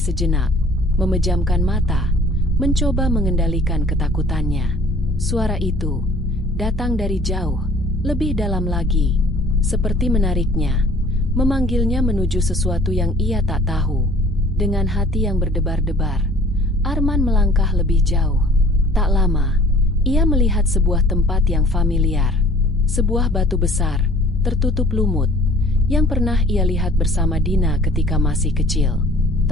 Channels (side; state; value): both; normal; correlation 0.52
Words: memejamkan mata, mencoba mengendalikan ketakutannya. Suara itu datang dari jauh, lebih dalam lagi, seperti menariknya, memanggilnya menuju sesuatu yang ia tak tahu. Dengan hati yang berdebar-debar, Arman melangkah lebih jauh. Tak lama, ia melihat sebuah tempat yang familiar. Sebuah batu besar, tertutup lumut, yang pernah ia lihat bersama Dina ketika masih kecil.